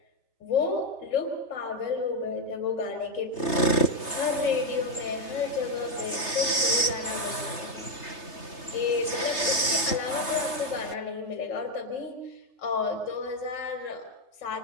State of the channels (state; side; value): late; right; 3.3 ms